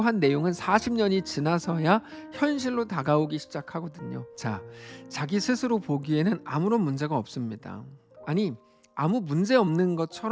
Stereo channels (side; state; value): both; identical; correlation 1.00